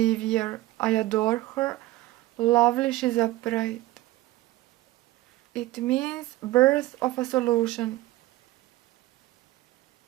I adore her. Lovely, she's upright. It means birth of a solution.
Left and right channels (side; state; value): left; quieter; 17.5 dB